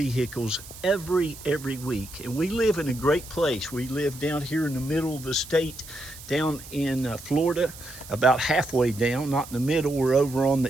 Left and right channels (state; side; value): noise; right; hiss, 16 dB below the sound